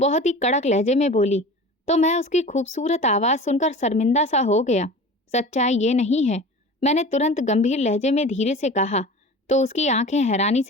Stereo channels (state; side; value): normal; both; correlation 0.37